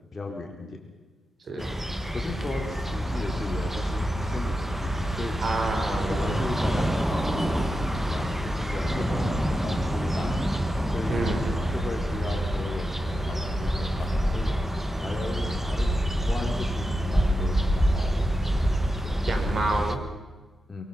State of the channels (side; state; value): both; normal; correlation 0.90